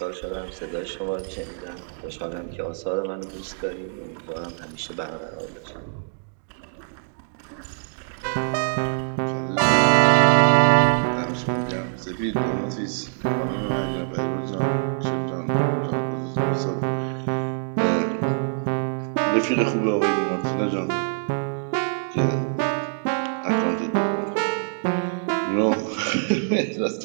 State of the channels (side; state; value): left; silent; digital silence